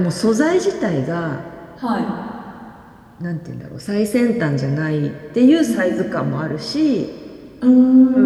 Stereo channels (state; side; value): identical; both; correlation 1.00